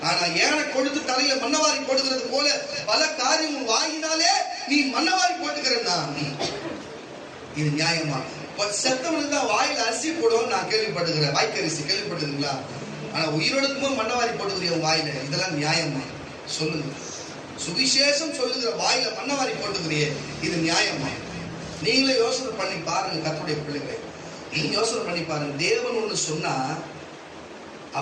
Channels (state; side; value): identical; both; correlation 1.00